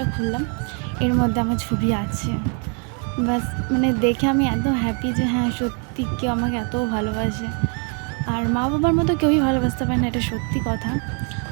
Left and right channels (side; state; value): left; quieter; 38.8 dB